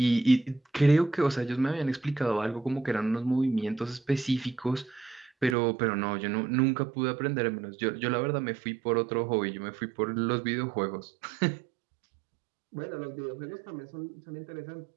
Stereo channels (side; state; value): left; drops out; at 5.6 s